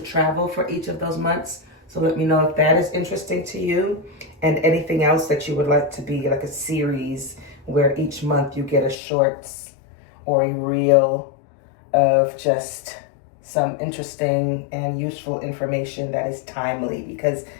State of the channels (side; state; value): right; drops out; at 9.0 s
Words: travel for each of those months. So let me know if that is interesting to you, and anything else that you would like to be like a series where each month you get a shorts or a reel of just some interesting and useful information that is timely, because